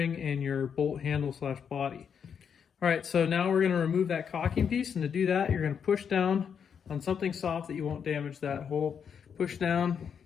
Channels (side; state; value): right; quieter; 7.3 dB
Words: and your bolt handle / body. All right, so now we're going to remove that cocking piece, and to do that, you're going to push down on something soft that you won't damage that hole. Push down